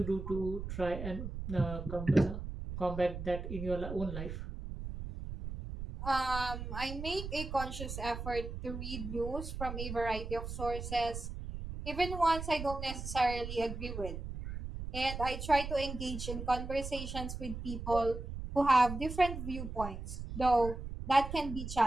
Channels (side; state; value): right; noise; rumble, 7 dB below the sound